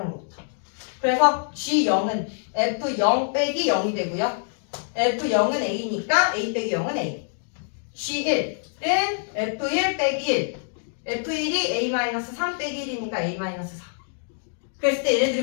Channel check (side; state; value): right; silent; digital silence